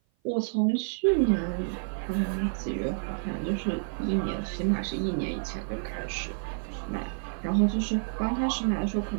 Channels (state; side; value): silent; left; 55 dB below the other